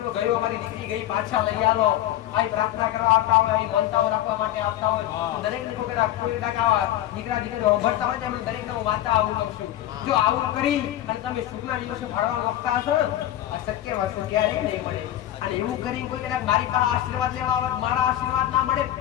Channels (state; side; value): quieter; right; 13.1 dB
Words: ગયો, અમારી દીકરી ગઈ, પાછા લઈ આવો, આવી પ્રાર્થના કરવા આવતા હોય, આવી મનતાઓ રાખવા માટે આવતા હોય. દરેક ને કોઈ દીકરા દીકરી ઉભરતા હોય એમને દરેક ને હું વાંચતા આવું કહું છું. જો આવું કરી અને તમે સુખના દિવસે ભાડવા માંગતા હશો ને, આ શક્ય વસ્તુ ક્યારેય નહીં મળે. અને એવું કરીને કોઈ કદાચ મારી પાસે આશીર્વાદ લેવા આવે, મારા આશીર્વાદ ના મળે,